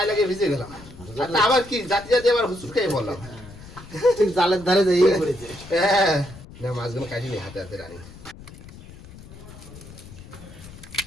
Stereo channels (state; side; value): noise; left; rumble, 17 dB below the sound